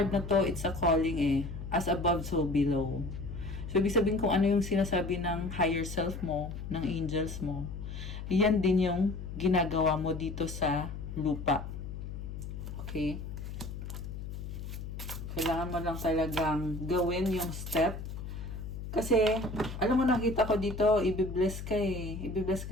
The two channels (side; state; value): left; noise; hum, 8 dB below the sound